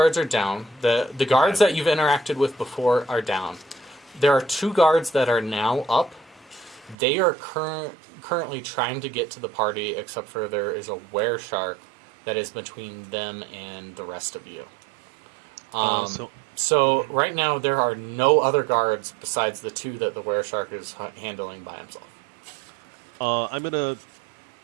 are down. The guards that you've interacted with before are down. There are 2 guards that are now up. They are currently trying to get to the party, except for there is a were-shark that is between them and the rest of you. So right now there are no other guards besides the 2 that the were-shark is handling by himself. I'm gonna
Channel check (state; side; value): drops out; left; at 7.0 s